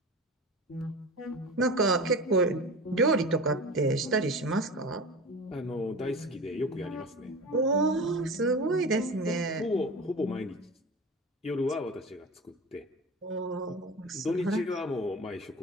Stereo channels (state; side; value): normal; both; correlation 0.32